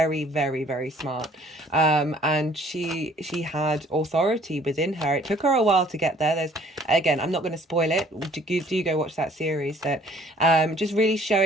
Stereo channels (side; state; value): both; normal; correlation 0.57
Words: very, very smart, and she had authority within her. It took her a while to get there. There's, again, I'm not going to spoil it. Do go watch that series. That just really